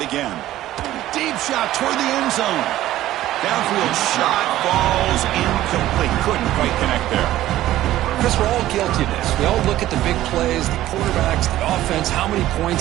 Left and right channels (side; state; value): left; quieter; 14.4 dB